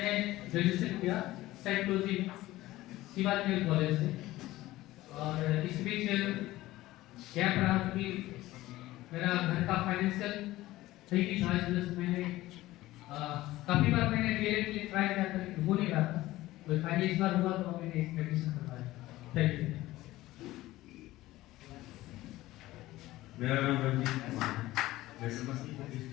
ग्रेजुएशन किया साइकोलॉजी शिवाजी कॉलेज से और इस बीच गैप रहा क्योंकि मेरा घर का फाइनेंशियल सही नहीं था. इस वजह से मैंने काफ़ी बार मैंने डीएलएड के लिए ट्राई किया था लेकिन हो नहीं रहा था. तो फाइनली इस बार हुआ तो मैंने इसमें एडमिशन करवाया. Thank you. मेरा नाम रंजीत कुमार है. मैं समस्तीपुर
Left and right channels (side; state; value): right; quieter; 17.0 dB